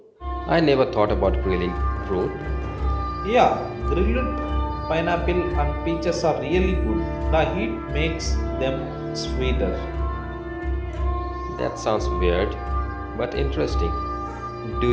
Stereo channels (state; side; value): identical; both; correlation 1.00